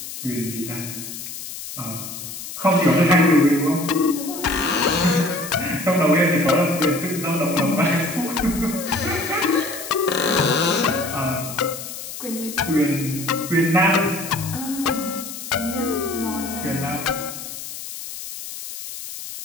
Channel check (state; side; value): noise; left; hiss, 10 dB below the sound